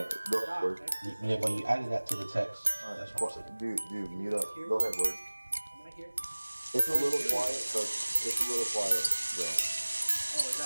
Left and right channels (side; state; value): both; inverted; correlation -1.00